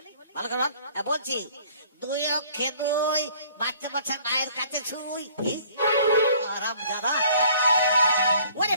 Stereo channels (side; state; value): both; inverted; correlation -0.56